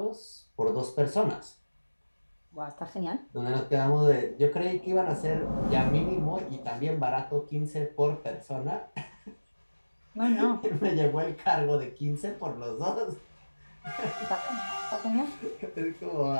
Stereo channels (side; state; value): both; inverted; correlation -1.00